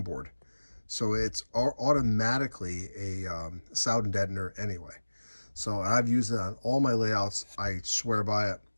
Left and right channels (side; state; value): both; inverted; correlation -1.00